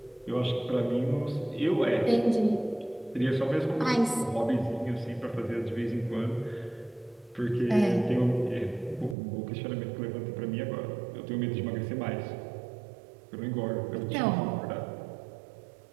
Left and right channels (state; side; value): drops out; left; at 9.2 s